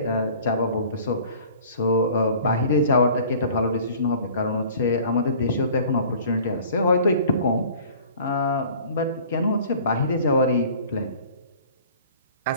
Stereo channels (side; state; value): both; inverted; correlation -0.49